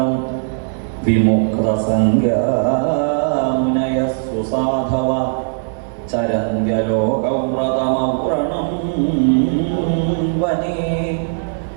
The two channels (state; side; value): silent; left; 57 dB below the other